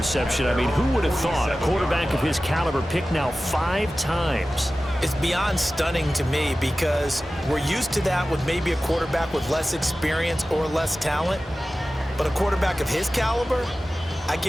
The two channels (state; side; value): normal; both; correlation 0.95